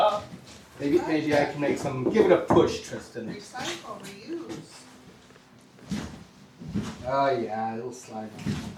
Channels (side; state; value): both; identical; correlation 1.00